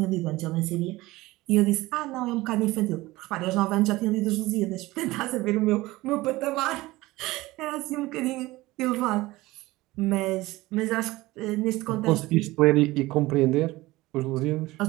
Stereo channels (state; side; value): quieter; left; 19.3 dB